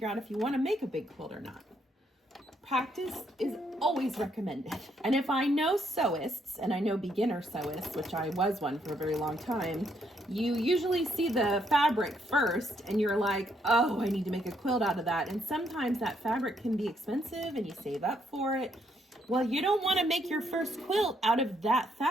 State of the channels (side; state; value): both; normal; correlation 0.73